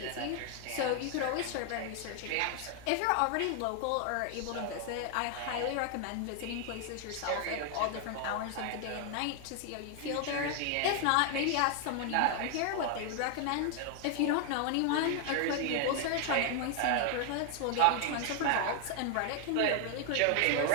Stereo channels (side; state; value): both; different; correlation 0.00